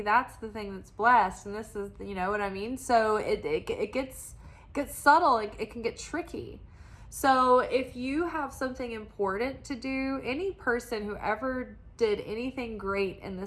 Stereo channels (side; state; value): both; identical; correlation 1.00